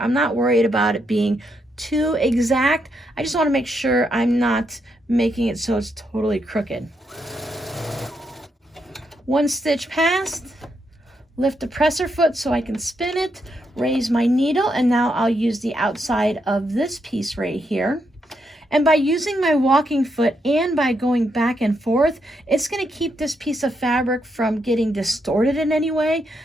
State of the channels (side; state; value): both; normal; correlation 0.80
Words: not worried about it being too exact. I just want to make sure I'm not making it so it's totally crooked. 1 stitch past, lift the presser foot so I can spin it, raise my needle, and now I'll use the outside of this piece right here. And by using my walking foot and by going back and forth, it's going to keep this piece of fabric from getting distorted in any way.